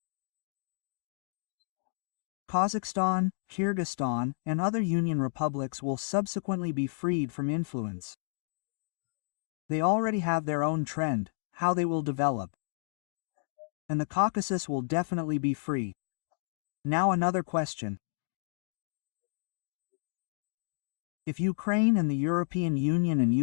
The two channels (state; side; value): silent; right; digital silence